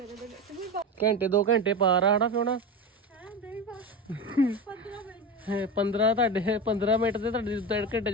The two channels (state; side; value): normal; both; correlation 0.21